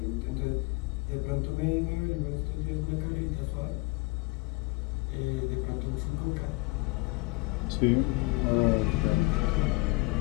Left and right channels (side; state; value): right; quieter; 24.3 dB